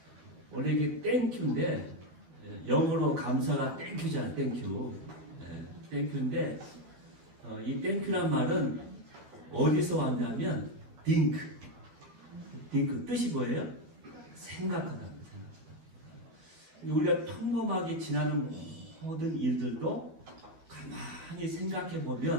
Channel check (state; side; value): late; left; 12 ms